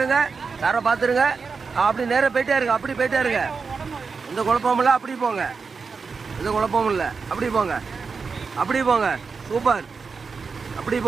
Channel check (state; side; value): quieter; left; 5.0 dB